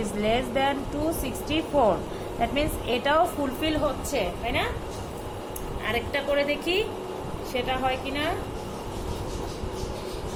is less than 264। that means এটাও fulfil হচ্ছে, তাই না? আরেকটা করে দেখি সেটা হয় কিনা।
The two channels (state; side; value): identical; both; correlation 1.00